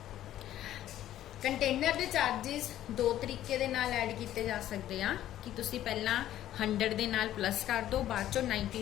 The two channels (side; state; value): right; quieter; 12.7 dB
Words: कंटेनर के चार्जिस दो तरीके दे नाल ऐड किए जा सकते हैं कि तुसी पहला 100 दे नाल प्लस कर दो, बाद चो 90